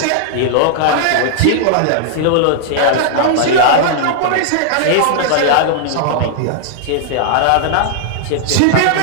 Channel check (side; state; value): both; different; correlation -0.01